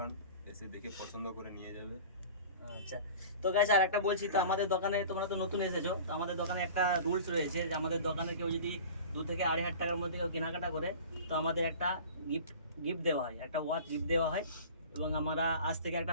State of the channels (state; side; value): inverted; both; correlation -0.40